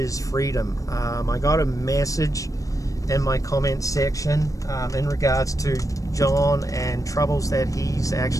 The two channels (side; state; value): right; late; 0.16 ms